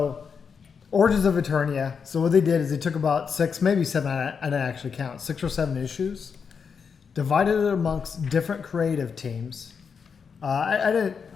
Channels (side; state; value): right; quieter; 6.1 dB